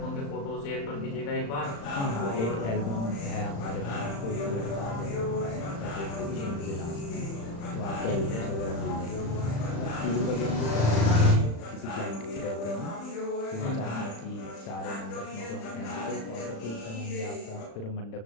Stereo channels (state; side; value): late; right; 35 ms